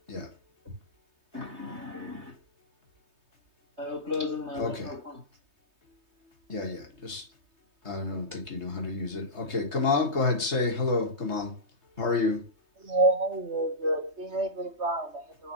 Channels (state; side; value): late; left; 3.2 ms